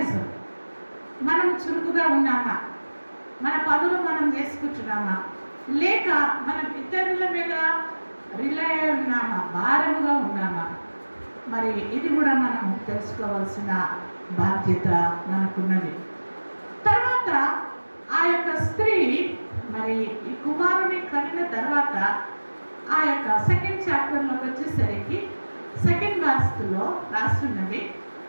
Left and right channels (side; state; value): both; inverted; correlation -1.00